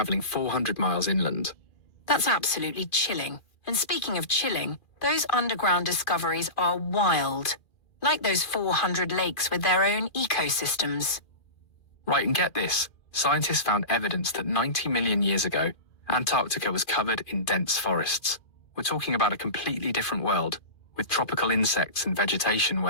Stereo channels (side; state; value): right; late; 2.4 ms